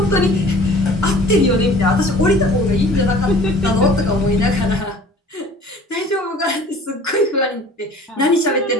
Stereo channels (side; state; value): both; normal; correlation 0.47